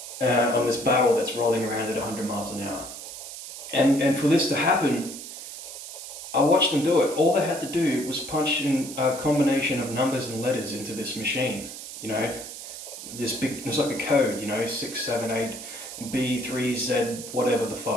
on this barrel that's rolling around at 100 miles an hour. And for this to happen, I watched them do it. All they had to do was punch in a combination of numbers and letters into this machine. You know, this big, it's like a code, you know, 6, 7, 8, B, 3, Z, whatever the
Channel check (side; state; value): right; noise; hiss, 11 dB below the sound